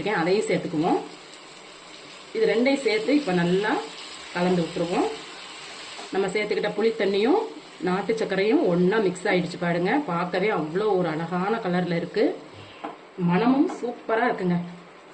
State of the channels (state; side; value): identical; both; correlation 1.00